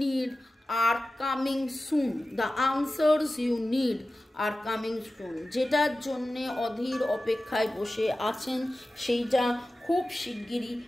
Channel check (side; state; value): both; normal; correlation 0.95